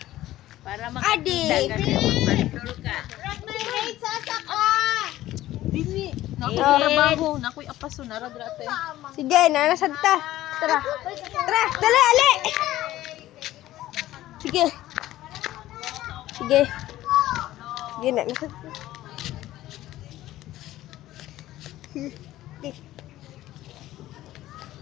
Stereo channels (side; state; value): right; quieter; 15.0 dB